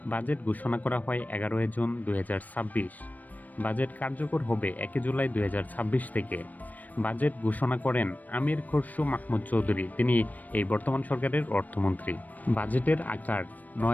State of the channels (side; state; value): right; late; 0.081 ms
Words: বাজেট ঘোষণা করা হয় 11 জুন 2026। বাজেট কার্যকর হবে 1 জুলাই 2026 থেকে। বাজেট ঘোষণা করেন আমির খসরু মাহমুদ চৌধুরী, তিনি এই বর্তমান সরকারের অর্থমন্ত্রী। বাজেটের আকার